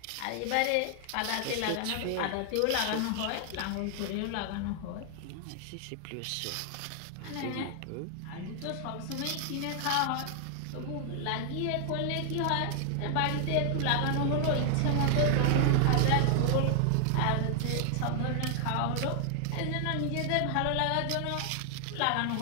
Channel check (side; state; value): both; different; correlation 0.00